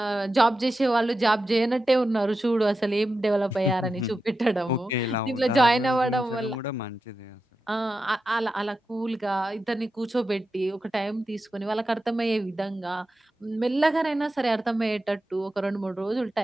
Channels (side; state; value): both; normal; correlation 0.90